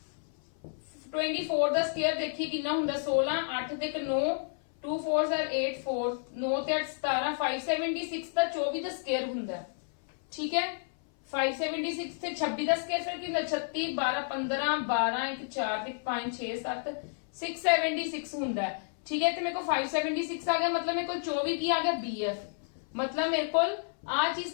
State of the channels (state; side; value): silent; right; 57 dB below the other